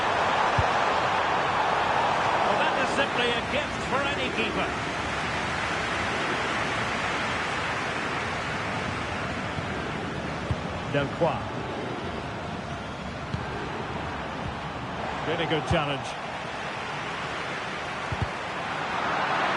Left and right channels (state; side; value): identical; both; correlation 1.00